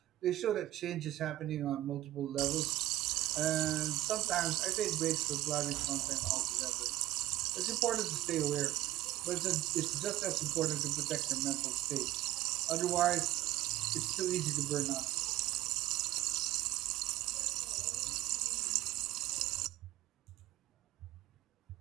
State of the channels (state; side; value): quieter; left; 15.2 dB